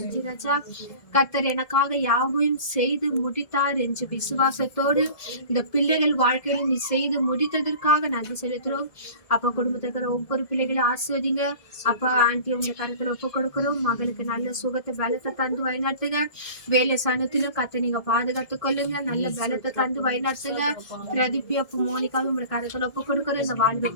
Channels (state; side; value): late; right; 1.7 ms